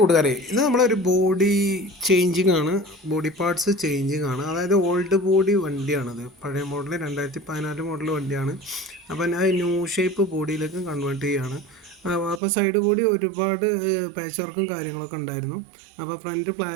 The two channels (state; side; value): drops out; left; at 12.4 s